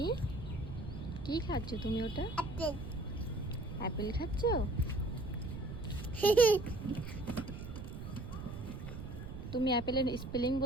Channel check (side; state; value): right; noise; rumble, 9 dB below the sound